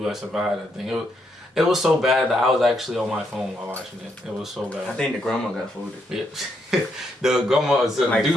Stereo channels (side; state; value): both; normal; correlation 0.77